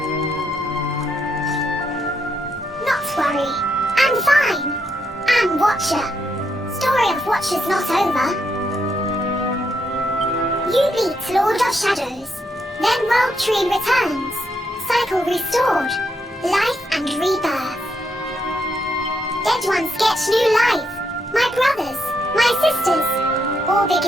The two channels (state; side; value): normal; both; correlation 0.78